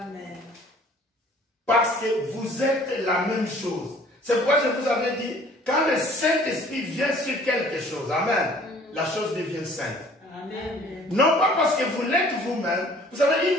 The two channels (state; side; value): normal; both; correlation 0.53